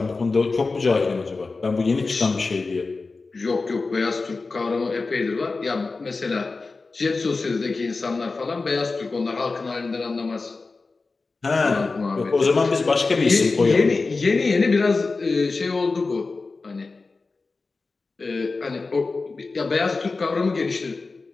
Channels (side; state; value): right; quieter; 3.9 dB